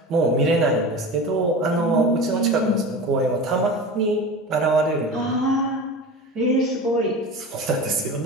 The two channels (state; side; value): normal; both; correlation 0.31